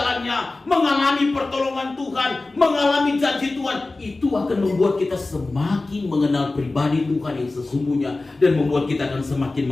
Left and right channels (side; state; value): right; quieter; 3.2 dB